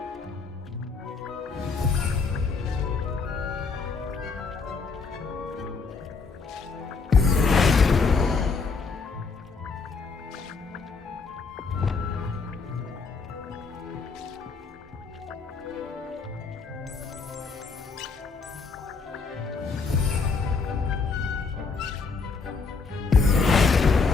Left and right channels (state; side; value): quieter; right; 4.6 dB